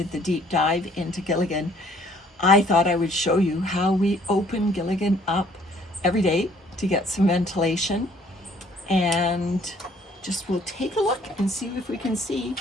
the deep dive into Gilligan. I thought I would show you how we open Gilligan up every day to get some ventilation, and just we'll take a look and see if we can see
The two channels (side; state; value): both; normal; correlation 0.60